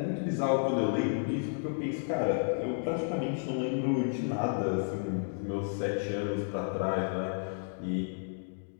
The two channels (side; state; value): right; silent; digital silence